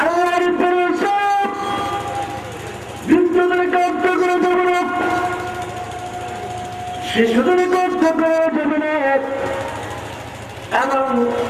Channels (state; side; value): identical; both; correlation 1.00